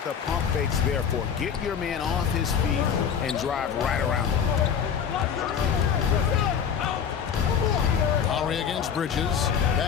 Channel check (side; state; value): right; quieter; 7.5 dB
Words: the pump fake's there for. Get your man off his feet and drive right around him. Lowry against Bridges.